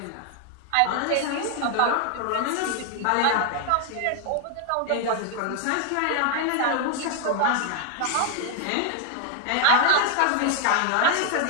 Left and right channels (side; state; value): both; different; correlation 0.00